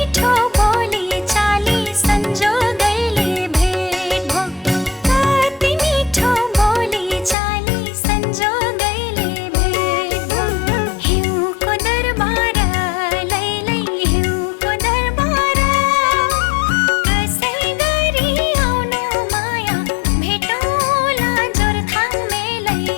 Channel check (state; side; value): drops out; right; at 7.4 s